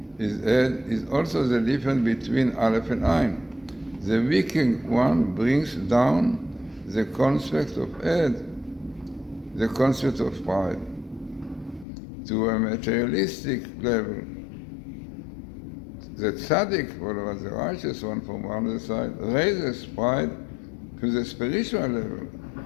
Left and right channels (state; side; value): drops out; right; at 11.9 s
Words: is also the difference between Aleph and Ein. The wicked one brings down the concept of Ed, the concept of pride, to a materialistic level. The tzaddik, or the righteous one from one other side, raises pride to the spiritual level,